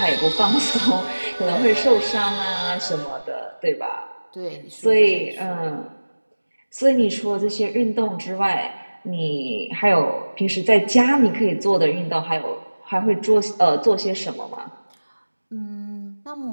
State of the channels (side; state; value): both; inverted; correlation -1.00